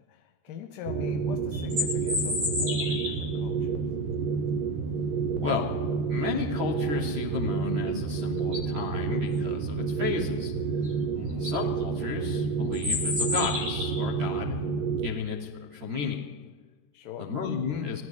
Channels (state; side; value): late; left; 13 ms